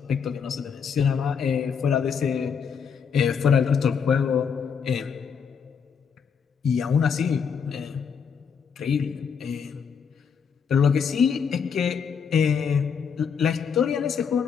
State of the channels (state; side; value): quieter; right; 6.6 dB